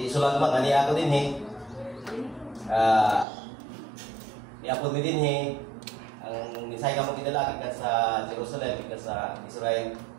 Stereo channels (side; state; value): left; drops out; at 3.2 s